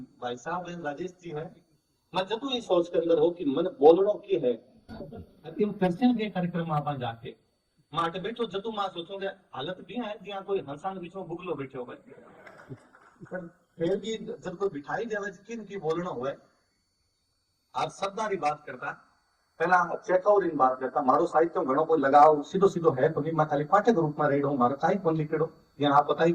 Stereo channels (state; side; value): identical; both; correlation 1.00